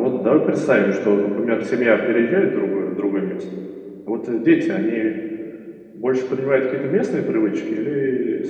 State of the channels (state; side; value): identical; both; correlation 1.00